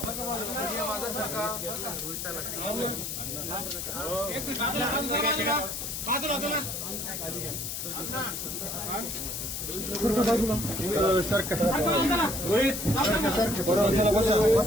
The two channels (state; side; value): noise; left; hiss, 5 dB below the sound